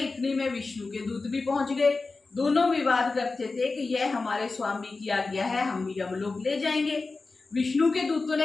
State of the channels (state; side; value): quieter; right; 3.8 dB